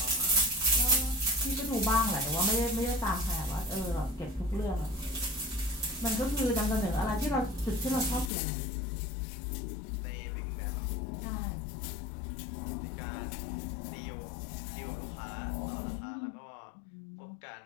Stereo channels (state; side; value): drops out; right; at 8.3 s